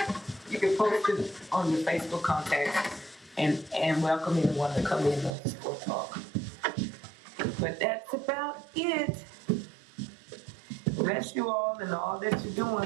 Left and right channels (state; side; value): drops out; left; at 5.4 s